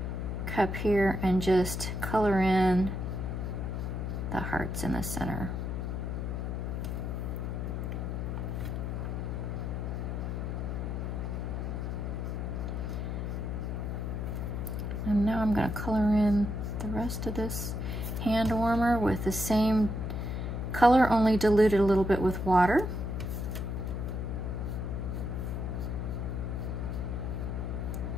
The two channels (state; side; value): noise; left; hum, 3 dB below the sound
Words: cup here and just color in the hearts in the center. And now I'm going to color in the rest of this hand warmer with the same color, only diluted a little bit with water.